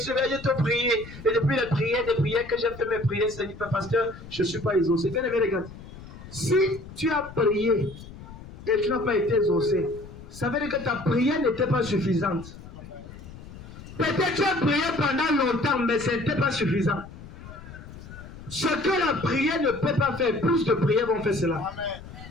t'ai prié, et depuis les prières que j'ai fait mes prières, Seigneur, pasteur, je ne suis pas exaucé. Bien aimé, regarde, si tu as prié et tu n'as pas été exaucé, ça veut dire que ta prière n'était pas suffisante. Peut-être tu as prié pendant longtemps, mais ce n'était pas suffisant. Ce que la prière ne peut pas faire, plus de prières vont faire cela. Amen.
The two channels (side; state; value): left; noise; rumble, 15 dB below the sound